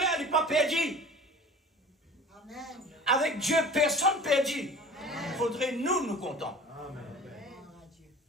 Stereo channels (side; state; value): both; normal; correlation 0.41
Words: il n'est pas perdu. Amen. Avec Dieu, personne perdu. Il faudrait nous contents.